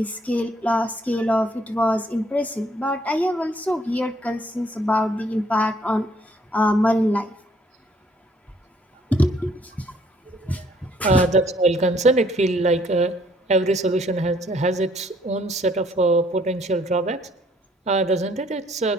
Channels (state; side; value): normal; both; correlation 0.64